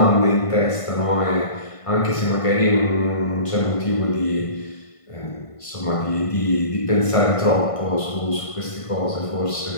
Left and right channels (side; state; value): right; late; 1.5 ms